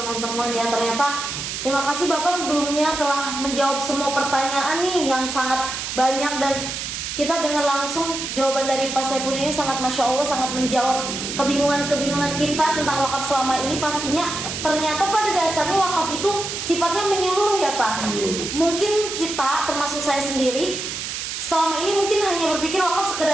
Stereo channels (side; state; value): right; noise; hiss, 5 dB below the sound